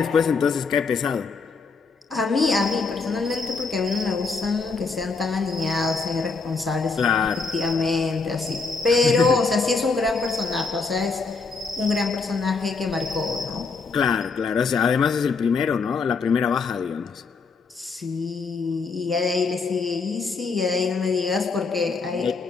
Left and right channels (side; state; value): right; quieter; 4.5 dB